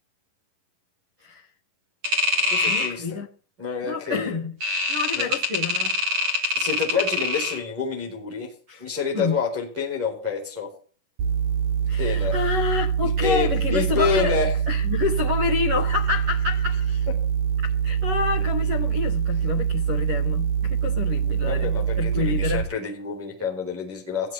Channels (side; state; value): left; late; 11 ms